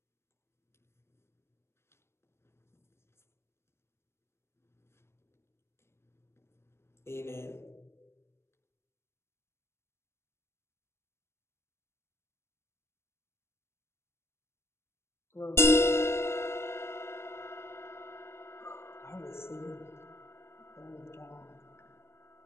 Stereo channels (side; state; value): right; late; 0.12 ms